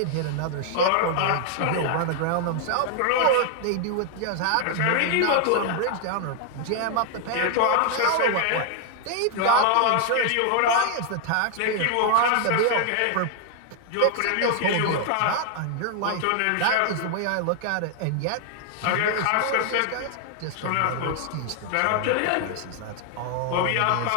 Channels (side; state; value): both; different; correlation 0.00